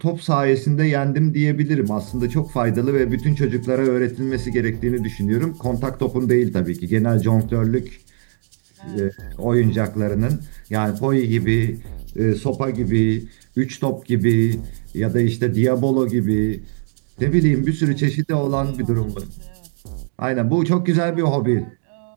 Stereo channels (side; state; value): left; silent; 66 dB below the other